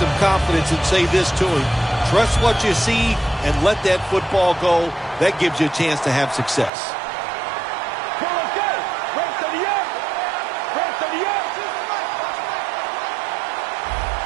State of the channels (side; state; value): left; drops out; at 6.7 s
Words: confidence and say this to him. Trust what you see and let that football go. That gives you a chance to have success.